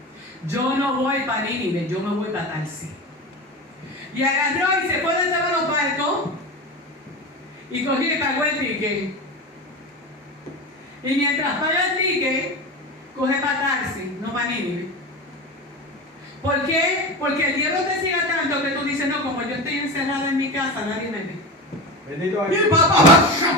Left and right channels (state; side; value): normal; both; correlation 0.25